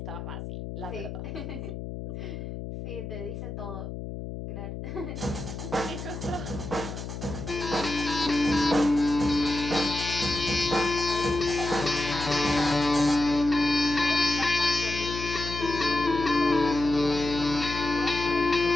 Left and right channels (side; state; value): left; noise; hum, 8 dB below the sound